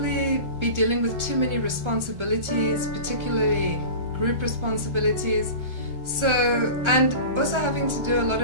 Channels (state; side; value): late; left; 1.4 ms